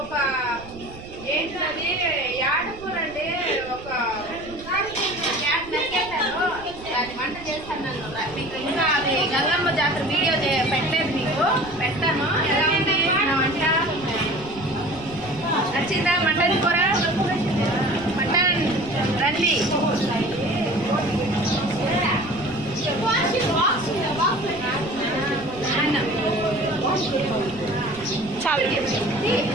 ఏంటది యాడకూర అండి ఒక క్యాట్ నరికేశాను దాన్ని వంట చేస్తాను మీకు ఇంకా అది గంగమ్మ జాతర వీడియో పెట్టలేదు మీకు పెడతాను ఎలా ఉంది నా వంట నచ్చిందా మటన్ కూర మటన్ రండి చాలా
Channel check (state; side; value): noise; right; rumble, 17 dB below the sound